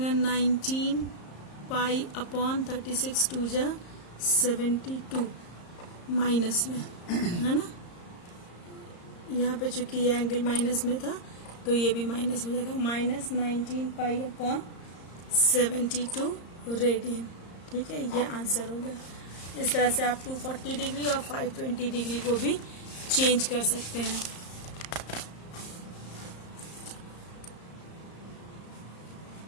19 पाई अपॉन 36 टू जा 72 माइनस में, है ना। यहाँ पे चूंकि ये एंगल माइनस में था तो ये भी माइनस हो जाएगा, माइनस 19 पाई अपॉन 72 रेडियन। ठीक है, ये आंसर हो गया। इस तरह से आप 240 डिग्री और 520 डिग्री को भी चेंज कर सकते हैं।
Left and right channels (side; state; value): right; late; 34 ms